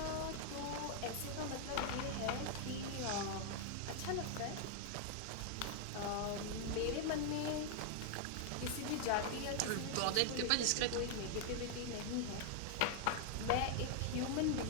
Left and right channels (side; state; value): both; different; correlation 0.00